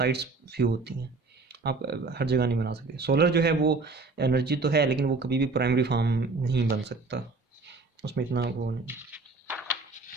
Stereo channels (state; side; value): quieter; left; 3.8 dB